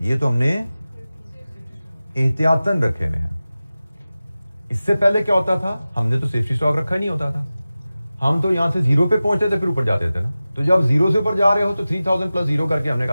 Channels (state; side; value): inverted; both; correlation -0.96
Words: ये तो हमने एहतियातन रखे हुए हैं। इससे पहले क्या होता था, हमने तो सेफ्टी स्टॉक रखा ही नहीं होता था, हम तो यहां से 0 पे पहुंचते थे फिर ऊपर जाते थे ना, तो जब 0 से ऊपर जा रहे हो तो 3000 प्लस 0 करके हमने